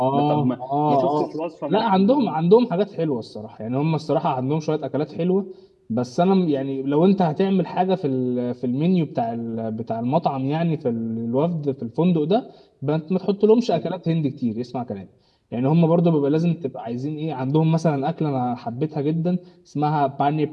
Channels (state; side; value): identical; both; correlation 1.00